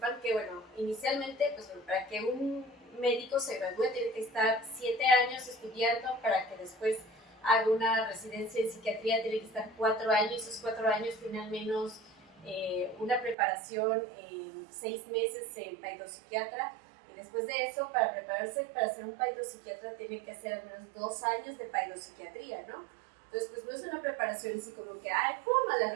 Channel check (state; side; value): drops out; left; at 13.4 s